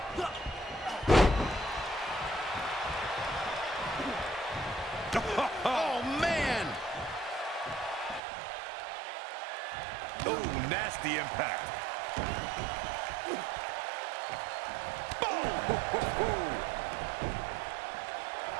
Oh, man! Oh, nasty impact.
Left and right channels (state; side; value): drops out; left; at 8.2 s